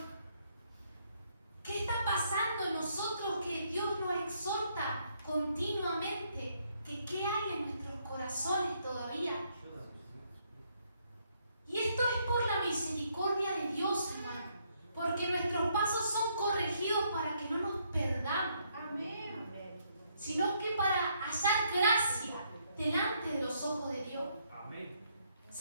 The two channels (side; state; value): both; inverted; correlation -0.72